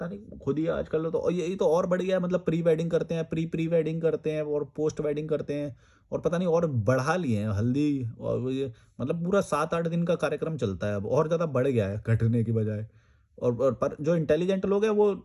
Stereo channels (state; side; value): identical; both; correlation 1.00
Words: नहीं खुद ही आजकल तो, और यही तो और बढ़ गया है, मतलब प्री वेडिंग करते हैं, प्री वेडिंग करते हैं और पोस्ट वेडिंग करते हैं, और पता नहीं और बढ़ा लिए हैं हल्दी, और वो ये मतलब पूरा 7-8 दिन का कार्यक्रम चलता है, अब और ज़्यादा बढ़ गया है घटने की बजाय। और पर जो इंटेलिजेंट लोग हैं वो